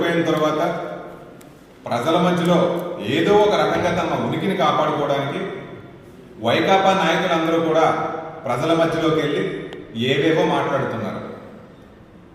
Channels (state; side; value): identical; both; correlation 1.00